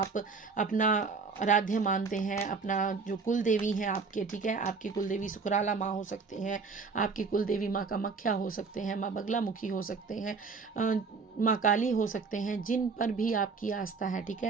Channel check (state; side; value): quieter; left; 4.8 dB